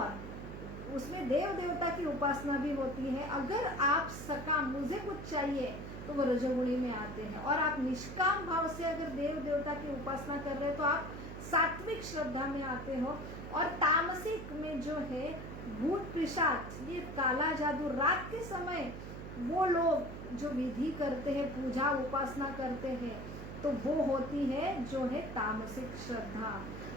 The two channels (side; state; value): right; noise; hum, 9 dB below the sound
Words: उसमें देव देवता की उपासना भी होती है। अगर आप सकाम, मुझे कुछ चाहिए, तो वो रजोगुणी में आते हैं, और आप निष्काम भाव से अगर देव देवता की उपासना कर रहे हैं तो आप सात्विक श्रद्धा में आते हो। और तामसिक में जो है भूत पिशाच, ये काला जादू, रात के समय वो लोग जो विधि करते हैं, पूजा उपासना करते हैं, तो वो होती है जो है तामसिक श्रद्धा।